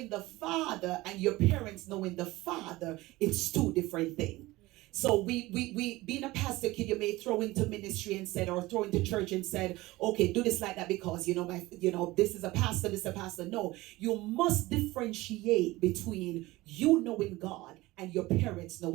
the Father and your parents knowing the Father, it's two different things. So we being a pastor kid, you may throw into ministry and said, or throw into church and said, okay, do this like that because this is a pastor, this is a pastor. No, you must differentiate between you knowing God and your parents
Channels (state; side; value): quieter; left; 19.4 dB